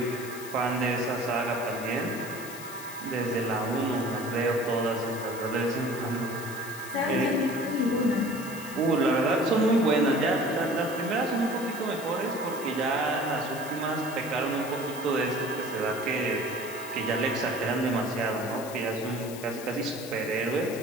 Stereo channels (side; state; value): left; noise; hiss, 13 dB below the sound